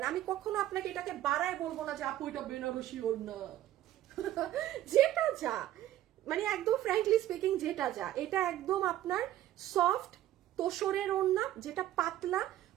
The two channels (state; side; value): quieter; left; 13.4 dB